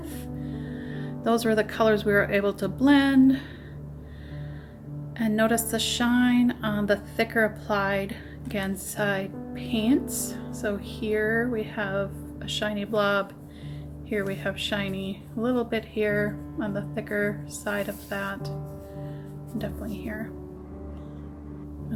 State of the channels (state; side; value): identical; both; correlation 1.00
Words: Those were the colors we were able to blend. And notice the shine on the thicker applied Gansai paints. So here we have a shiny blob. Here we have shiny a little bit here on the thicker side of that. Definitely here.